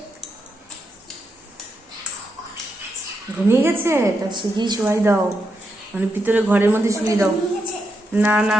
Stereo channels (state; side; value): normal; both; correlation 0.84